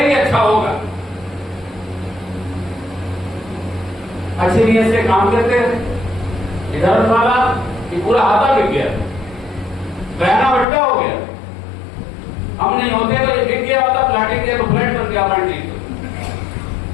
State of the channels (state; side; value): drops out; right; at 10.7 s